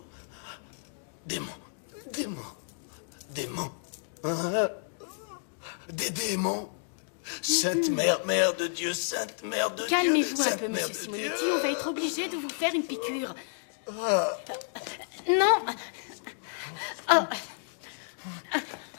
Démons, démons, démons. Hein? Des démons. Sainte Mère, Mère de Dieu, Sainte Mère de Dieu. Calmez-vous un Sainte peu, Mère monsieur de Simonetti. Dieu. On va être obligé de vous faire une piqûre. Non. Oh.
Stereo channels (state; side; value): silent; right; digital silence